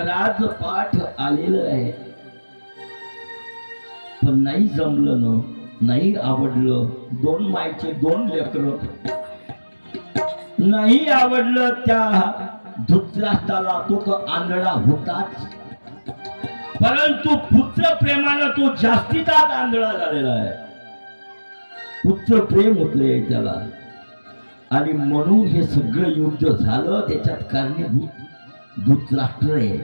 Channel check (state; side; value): inverted; both; correlation -1.00